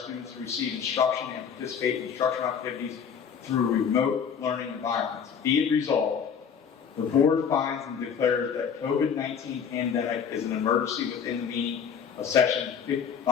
to receive instruction and participate in instructional activities through remote learning environments. Be it resolved, the Board finds and declares that COVID-19 pandemic is an emergency within the meaning of Section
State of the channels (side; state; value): right; quieter; 7.2 dB